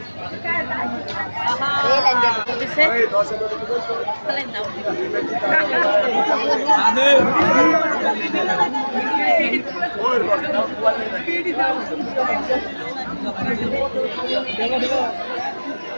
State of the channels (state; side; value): inverted; both; correlation -1.00